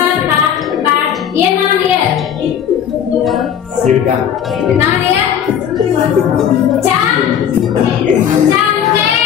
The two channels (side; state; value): right; quieter; 8.9 dB